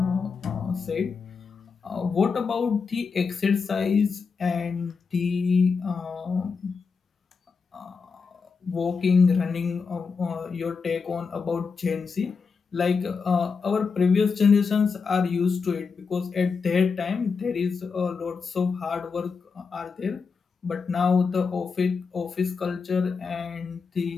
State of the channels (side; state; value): right; quieter; 5.2 dB